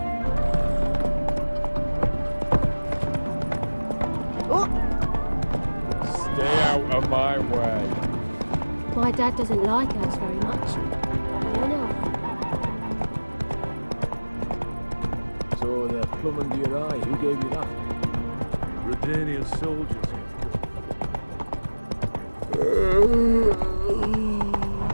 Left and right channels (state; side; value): inverted; both; correlation -1.00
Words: Stay out of my way. My dad doesn't like us very much. You know. So the plum under your eye, who gave you that? Redanian soldiers.